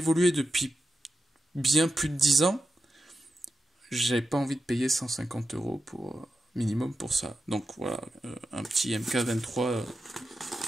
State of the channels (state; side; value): normal; both; correlation 0.91